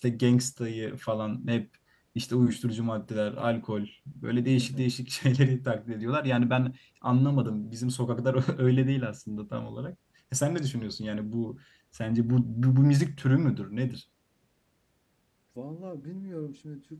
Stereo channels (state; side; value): identical; both; correlation 1.00